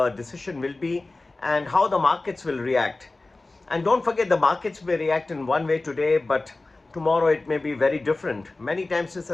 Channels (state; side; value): quieter; right; 3.2 dB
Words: decision will be and how the markets will react. And don't forget, the markets may react in one way today, but tomorrow it may be very different. Many times this